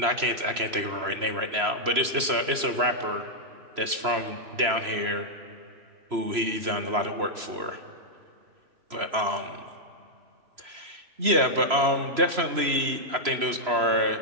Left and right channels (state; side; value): late; left; 3.0 ms